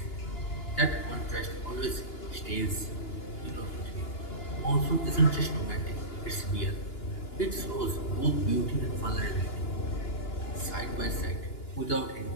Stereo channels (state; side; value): late; right; 2.9 ms